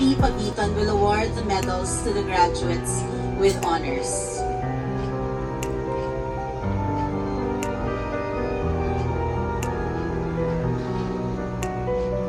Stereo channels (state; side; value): identical; both; correlation 1.00